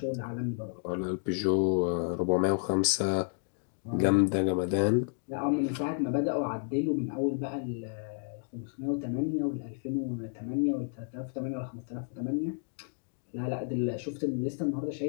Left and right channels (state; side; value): silent; right; digital silence